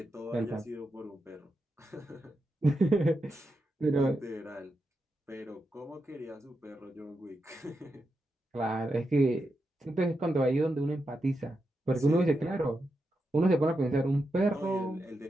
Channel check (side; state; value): both; normal; correlation 0.86